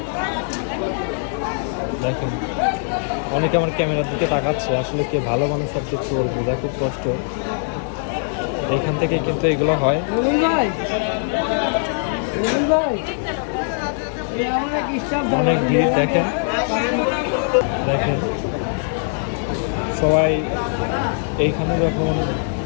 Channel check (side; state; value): right; silent; digital silence